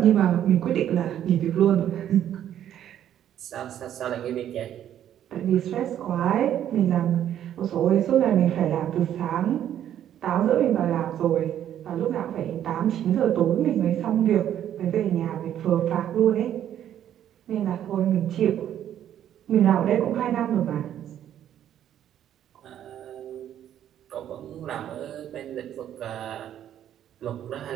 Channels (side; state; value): left; quieter; 10.7 dB